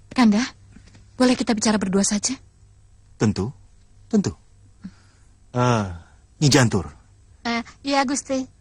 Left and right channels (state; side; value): identical; both; correlation 1.00